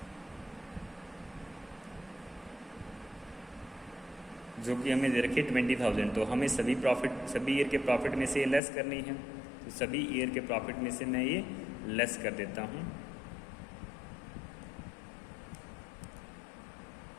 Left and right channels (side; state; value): right; drops out; at 8.6 s